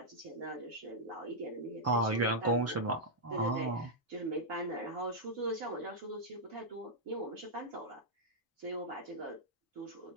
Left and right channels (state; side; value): normal; both; correlation -0.07